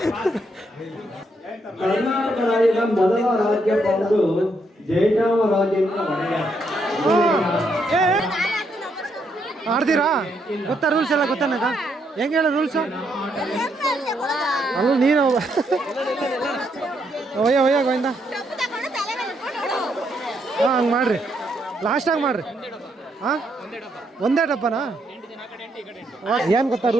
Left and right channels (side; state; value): both; normal; correlation 0.76